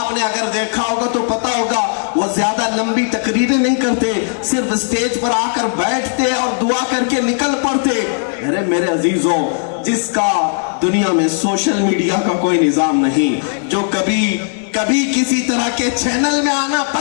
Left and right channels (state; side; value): silent; right; 69 dB below the other